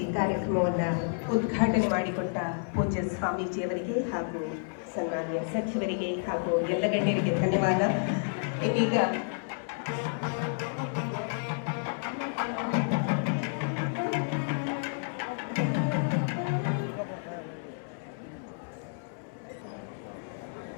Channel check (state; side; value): silent; right; 58 dB below the other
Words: ಕಾರ್ಯಕ್ರಮವನ್ನು ಉದ್ಘಾಟನೆ ಮಾಡಿಕೊಟ್ಟ ಪೂಜ್ಯ ಸ್ವಾಮೀಜಿಯವರಿಗೆ ಹಾಗೂ ಸನ್ಮಾನ್ಯ ಸಚಿವರಿಗೆ ಹಾಗೂ ಎಲ್ಲ ಗಣ್ಯರಿಗೆ ಧನ್ಯವಾದ. ಇದೀಗ